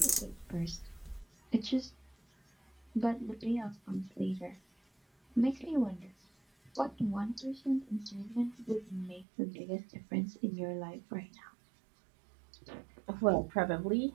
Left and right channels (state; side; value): drops out; left; at 9.2 s